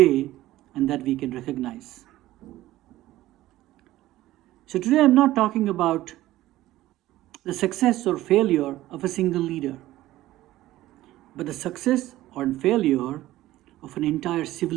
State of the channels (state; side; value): quieter; left; 15.7 dB